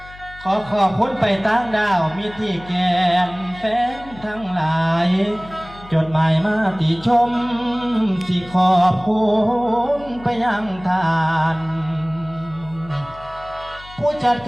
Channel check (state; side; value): noise; left; hum, 19 dB below the sound